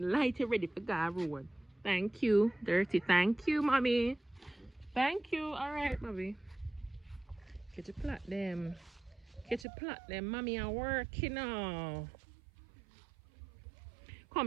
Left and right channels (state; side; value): drops out; left; at 9.7 s